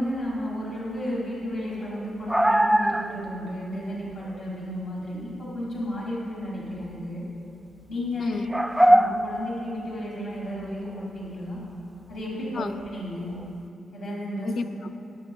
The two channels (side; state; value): both; normal; correlation 0.92